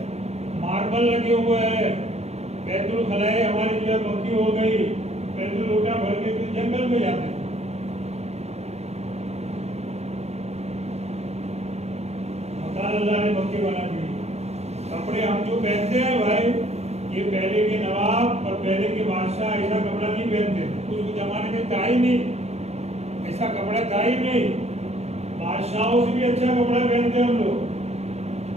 ماربل لگے ہوئے ہیں. بیت الخلاء ہماری جو ہے پکی ہو گئی. بیت الوٹا بھر کے پھر جنگل میں جاتے ہیں. مکان اللہ نے پکے بنا دیے. کپڑے ہم جو پہنتے ہیں بھائی، یہ پہلے کے نواب اور پہلے کے بادشاہ ایسا کپڑا نہیں پہنتے. اس زمانے میں تھا ہی نہیں، ایسا کپڑا تھا ہی نہیں. بادشاہوں سے بھی اچھا کپڑا پہنتے ہم لوگ.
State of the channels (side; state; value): left; late; 0.31 ms